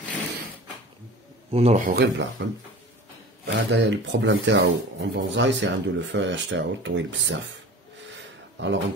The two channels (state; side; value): normal; both; correlation 0.39